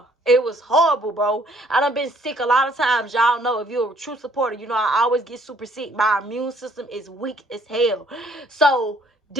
it was horrible, bro. I done been sick a lot of times. Y'all know, if you're a true supporter, you know I always get super sick. My immune system is weak as hell. So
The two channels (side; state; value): both; normal; correlation 0.62